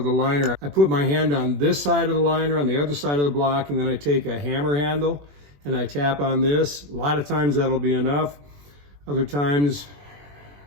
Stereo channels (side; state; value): left; late; 21 ms